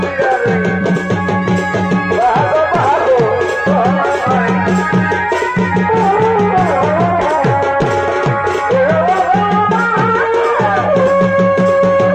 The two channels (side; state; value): right; noise; hum, 26 dB below the sound